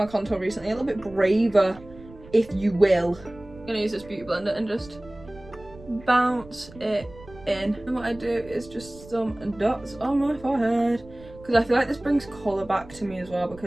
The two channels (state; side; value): noise; right; rumble, 20 dB below the sound